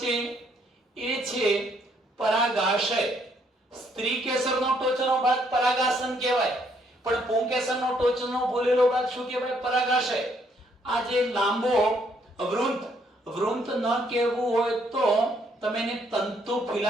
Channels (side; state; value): both; normal; correlation 0.69